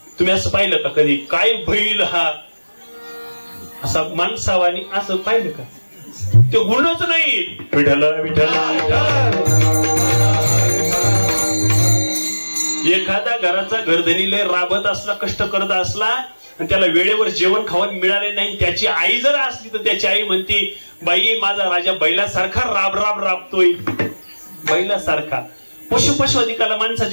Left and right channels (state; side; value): inverted; both; correlation -1.00